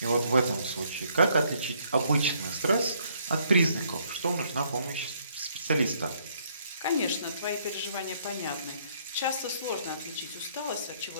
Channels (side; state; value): both; inverted; correlation -0.67